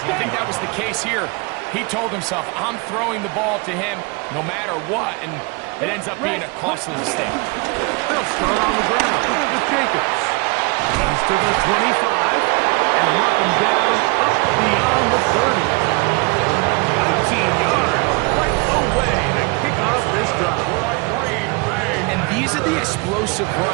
think that was the case here. He told himself, I'm throwing the ball to him no matter what, and it ends up being a costly mistake. They'll start on the ground with Jacobs. He's to the 25, and mark him down up beyond the 30. 19 yards right away to kick off this drive. And these are the explosive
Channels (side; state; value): left; quieter; 28.4 dB